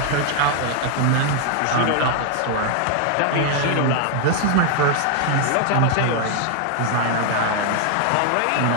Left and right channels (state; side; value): different; both; correlation 0.00